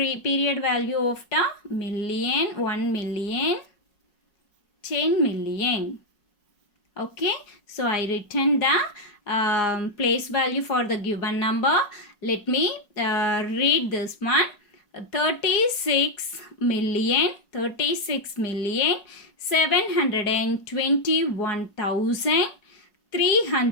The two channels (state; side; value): late; right; 4.8 ms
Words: value of the million, 1 million, 10 million. Okay, so I written the place value for the given number. Let me read this one. 36 million